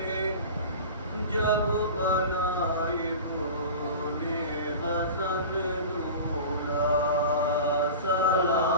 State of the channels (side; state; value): both; inverted; correlation -0.34